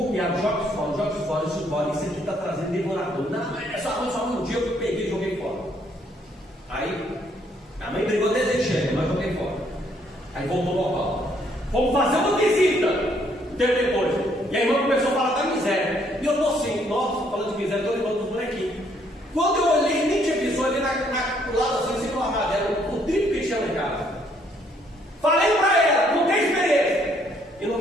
piado, joga fora, isso aqui está trazendo devorador. Não, é só um dia eu peguei e joguei fora. Aí, a mãe brigou desejando, mas joguei fora. Aí voltou ao local. Vamos fazer uma visita. Tempo depois. E a irmã começou a falar da miséria. E eu estou assim, nossa, falando de miséria, estou lembrando dos bonequinhos. Quando eu olhei, nem tinha visto ali do lado assim, em cima do armário dela, o triplo que tinha lá em casa. Falei para ela, não tem experiência. E não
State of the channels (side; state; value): both; normal; correlation 0.68